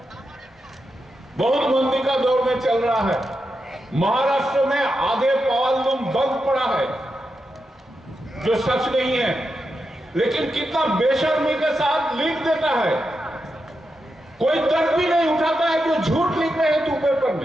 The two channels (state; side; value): normal; both; correlation 0.87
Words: बहुत मंदी का दौर में चल रहा है। महाराष्ट्र में आधे पावर लूम बंद पड़ा है, जो सच नहीं है, लेकिन कितना बेशर्मी के साथ लिख देता है। कोई तर्क भी नहीं उठाता है जो झूठ लिख रहे हैं तू पेपर